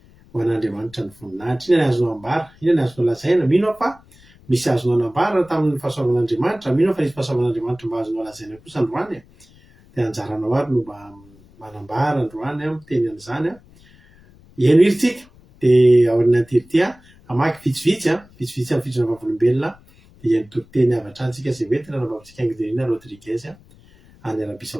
ho an'Andriamanitra ny voninahitra inona ny azonao ambara inona ny azonao lazaina mino fa misy azonao anambara tamin'ny fahasoavan'Andriamanitra mino fa nisy fahasoavan'Andriamanitra mba azonao lazaina kosa androany dia anjaranao ary no mba manambara androany miteny an'izany eno iritsika dia ao aorianan'ity amaky vitsivitsy amin'ny fitsona vavolombelona dia ny toriteny avatra antsika izay hoentina nambavitsika Anguina Rodriguez any Arabie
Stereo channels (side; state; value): left; noise; rumble, 27 dB below the sound